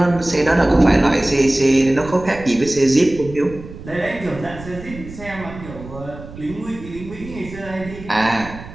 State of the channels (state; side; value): noise; right; rumble, 15 dB below the sound